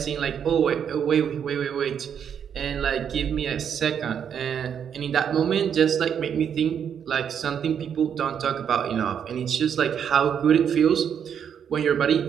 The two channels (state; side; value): quieter; left; 8.1 dB